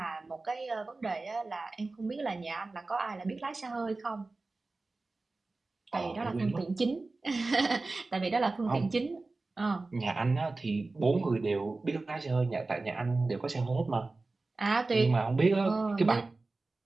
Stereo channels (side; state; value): left; quieter; 3.4 dB